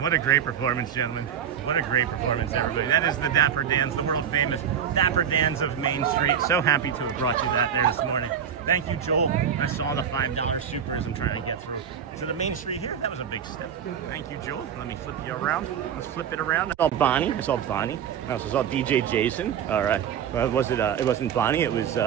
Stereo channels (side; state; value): left; quieter; 8.4 dB